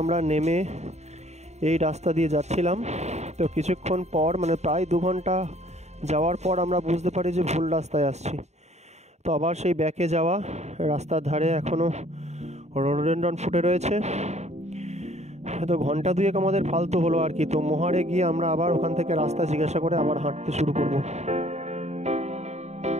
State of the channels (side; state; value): left; late; 0.32 ms